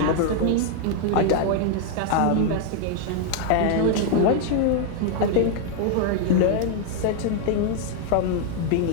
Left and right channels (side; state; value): both; different; correlation 0.00